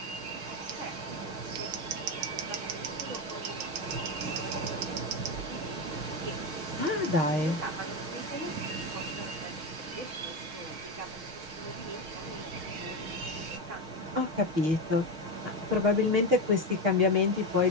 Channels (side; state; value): left; late; 6.4 ms